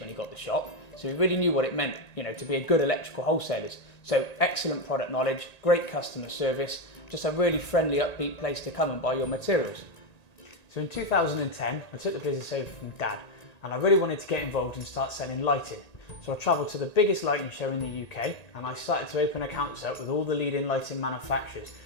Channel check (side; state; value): right; late; 1.9 ms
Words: he got the shop, so he really knew what it meant, to be a good electrical wholesalers. So excellent product knowledge, great customer service, just a really friendly, upbeat place to come and buy your materials. So in 2010, I took the business over from Dad, and I really wanted to get involved and start selling lighting. So I travelled to the biggest lighting show in the UK, and I started to open accounts up with all the leading lighting manufacturers.